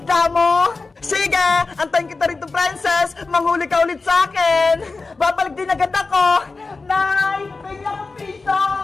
mo. Sige, antayin kita rito, princess. Manghuli ka ulit sa akin. Babalik din agad ako. Nay, bigyan ako piso.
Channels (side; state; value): right; quieter; 3.9 dB